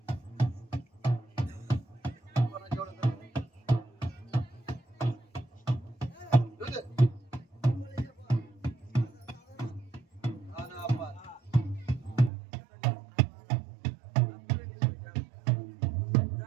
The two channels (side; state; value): left; drops out; at 12.3 s